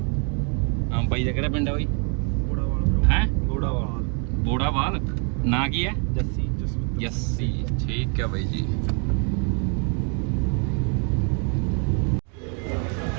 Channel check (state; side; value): quieter; left; 38.6 dB